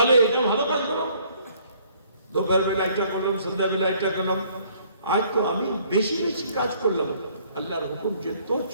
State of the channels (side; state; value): both; inverted; correlation -0.61